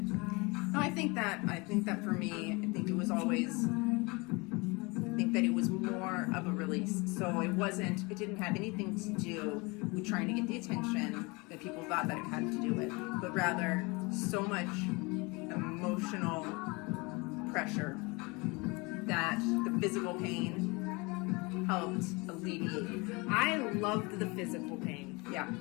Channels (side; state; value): right; quieter; 26.9 dB